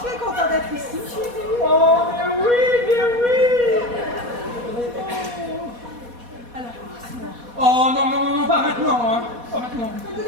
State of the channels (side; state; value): left; late; 4.2 ms